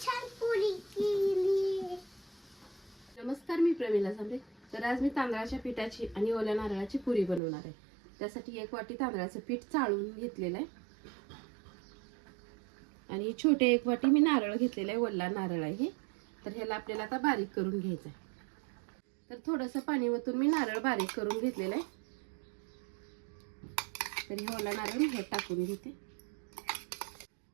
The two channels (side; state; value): left; drops out; at 7.4 s